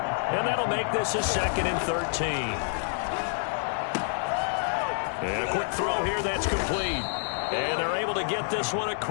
And that'll make this a 2nd and 13. And a quick throw here that's complete. And they're able to get this one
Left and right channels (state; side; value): silent; right; digital silence